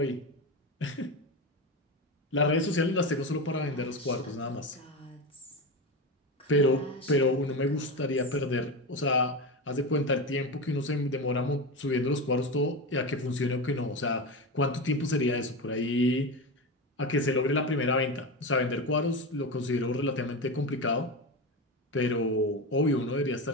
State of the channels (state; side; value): normal; both; correlation 0.20